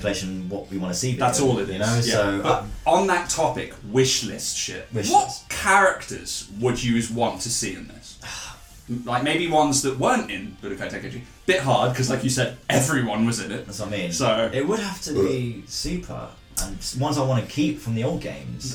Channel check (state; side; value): identical; both; correlation 1.00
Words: What we want to see. That's all it is. You know. Yeah. So but on that topic, wish list shit. What characters would you want to see in this? Like maybe ones that weren't in Budokai Tenkaichi. Bit hard because, like you said, everyone was in it. That's what I mean. So it would have to be Super and ones I want to keep from the old